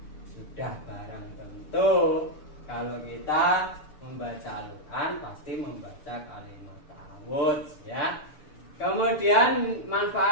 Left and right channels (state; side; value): late; right; 6.8 ms